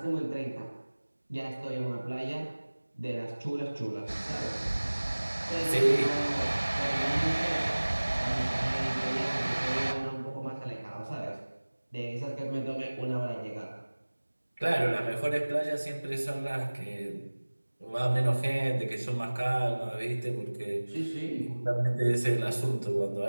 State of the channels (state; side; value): inverted; both; correlation -1.00